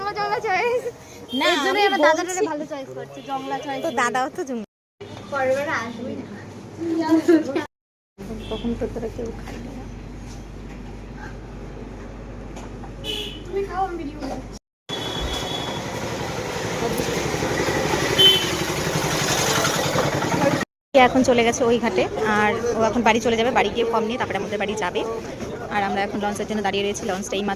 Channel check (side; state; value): both; identical; correlation 1.00